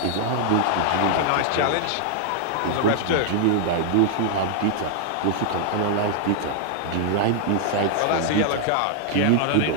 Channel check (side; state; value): both; different; correlation 0.00